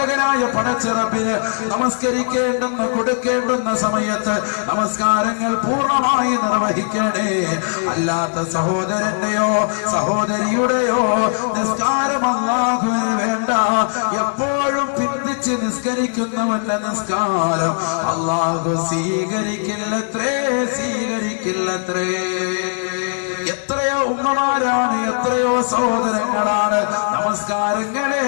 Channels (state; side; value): silent; right; digital silence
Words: പടച്ചിറപ്പിന് നമസ്കരിക്കേണ്ടെന്ന കൊടുക്കേണ്ടുന്ന സമയത്ത് നമസ്കാരങ്ങൾ പൂർണ്ണമായി നിർവഹിക്കണേ. അല്ലാത്ത സഹോദരന്റെയോ സഹോദരിയുടെയോ നിസ്കാരം അല്ലാഹുവിന് വേണ്ട. എപ്പോഴും പിന്തിച്ച് നിസ്കരിക്കുന്നവന്റെ നിസ്കാരം അല്ലാഹു സ്വീകരിക്കില്ലത്രേ. എത്രയോ ഉമ്മമാരാണ്, എത്രയോ സഹോദരങ്ങളാണ് നമസ്കാരങ്ങളെ